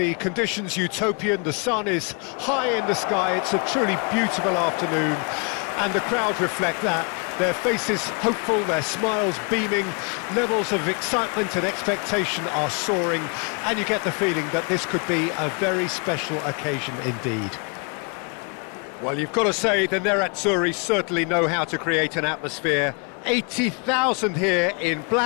conditions utopian, the sun is high in the sky, it's a truly beautiful afternoon, and the crowd reflect that. Their faces hopeful, their smiles beaming, levels of excitement and expectation are soaring, and you get the feeling that this could be a very special occasion indeed. Well, you've got to say the Nerazzurri certainly know how to create an atmosphere. 80,000 here in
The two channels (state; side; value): quieter; right; 35.2 dB